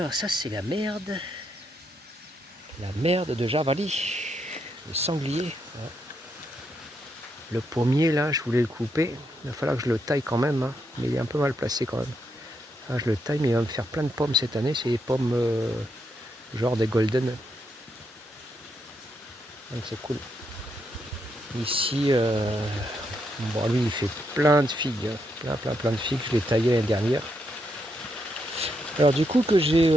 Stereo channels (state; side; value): normal; both; correlation 0.79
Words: ça c'est la merde de javali, le sanglier. Le pommier là, je voulais le couper, il va falloir que je le taille quand même, mais il est un peu mal placé quand même. Ah, je le taille, mais il va me faire plein de pommes cette année, c'est des pommes genre des golden. Donc c'est cool. Ici, bon, lui il fait plein de figues, plein de figues, je l'ai taillé l'année dernière. Alors du coup que j'ai